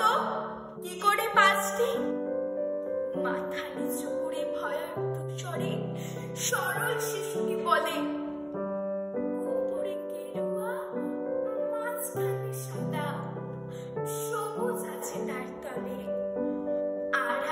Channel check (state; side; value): identical; both; correlation 1.00